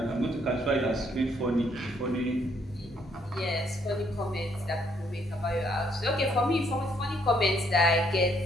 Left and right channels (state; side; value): normal; both; correlation 0.69